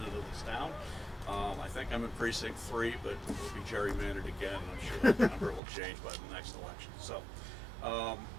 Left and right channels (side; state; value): left; drops out; at 5.6 s